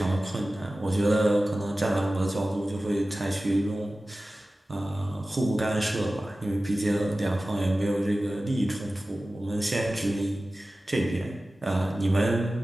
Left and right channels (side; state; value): both; normal; correlation 0.96